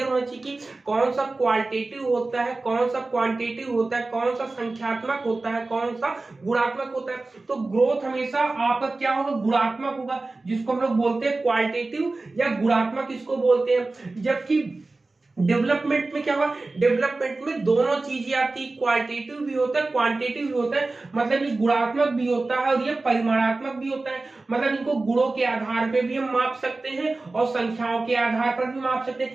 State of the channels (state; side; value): quieter; left; 3.3 dB